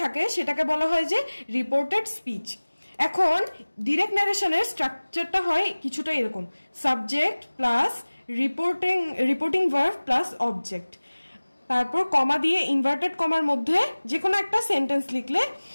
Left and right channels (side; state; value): both; inverted; correlation -1.00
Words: থাকে সেটাকে বলা হয় যে রিপোর্টেড স্পিচ। এখন ডিরেক্ট ন্যারেশনের স্ট্রাকচারটা হয় কিছুটা এরকম: subject plus reporting verb plus object, তারপর কমা দিয়ে ইনভার্টেড কমার মধ্যে যে কোনো একটা সেন্টেন্স লিখলে,